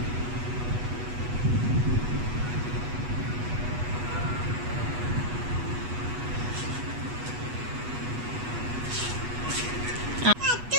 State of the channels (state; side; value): late; left; 8.2 ms